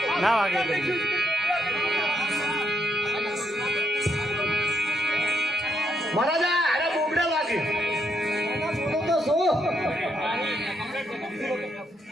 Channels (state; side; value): normal; both; correlation 0.77